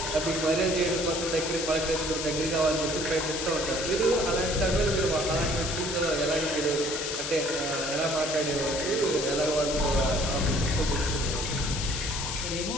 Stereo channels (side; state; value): left; noise; hiss, 4 dB below the sound